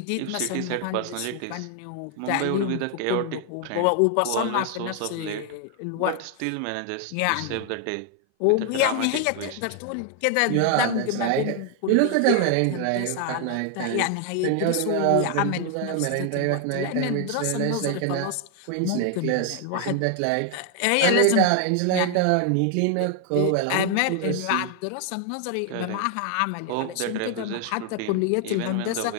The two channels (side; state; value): both; different; correlation 0.00